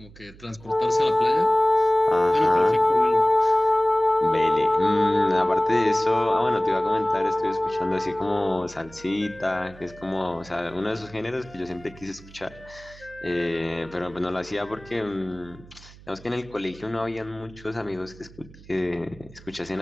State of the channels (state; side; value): noise; right; hum, 21 dB below the sound